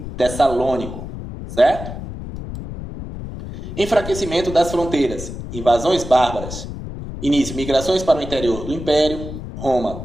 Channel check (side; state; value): left; noise; rumble, 9 dB below the sound